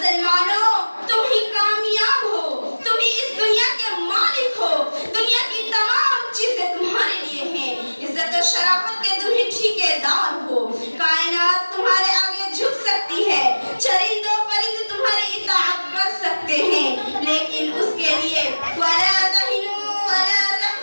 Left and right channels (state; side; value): inverted; both; correlation -1.00